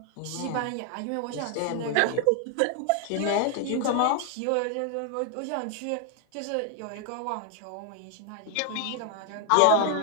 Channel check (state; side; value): different; both; correlation 0.00